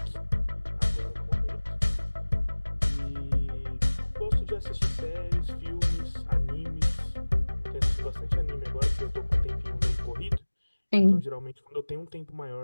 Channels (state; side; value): inverted; both; correlation -1.00